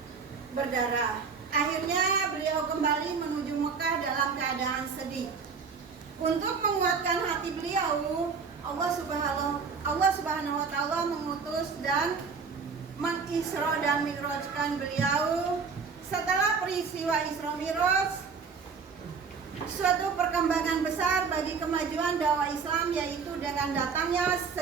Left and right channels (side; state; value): left; quieter; 5.4 dB